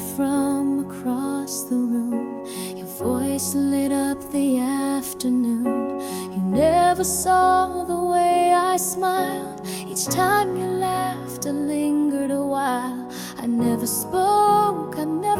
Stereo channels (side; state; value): both; identical; correlation 1.00